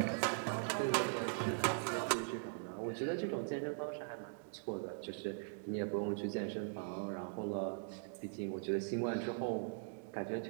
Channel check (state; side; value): silent; left; digital silence